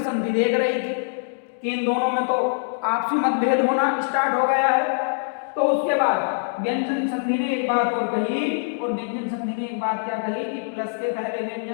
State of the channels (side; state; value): right; silent; digital silence